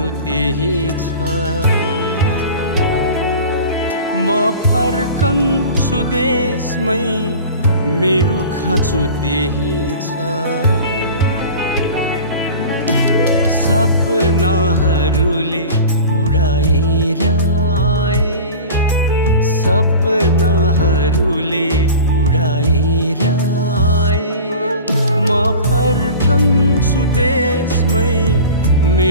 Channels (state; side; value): inverted; both; correlation -0.36